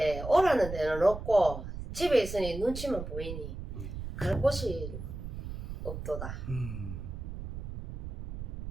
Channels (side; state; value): right; noise; rumble, 8 dB below the sound